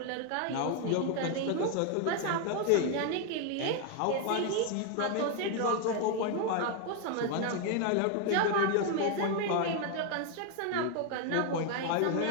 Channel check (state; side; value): different; both; correlation 0.01